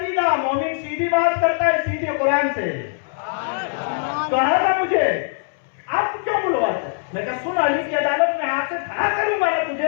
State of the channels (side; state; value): right; silent; 65 dB below the other